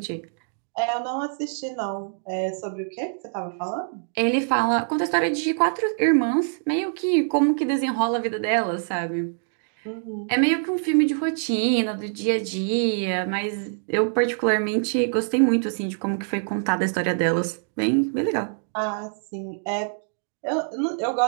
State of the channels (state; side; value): silent; left; digital silence